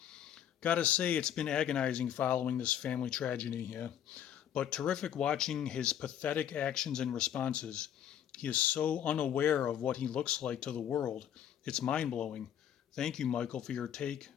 Gotta say, it's been agonizing following this family tragedy here, but terrific watching his pathetic actions and responses. He is so unaware of what he looks like to the world. It's mind-blowing. Thank you, Michael, for your take.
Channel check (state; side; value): quieter; right; 9.9 dB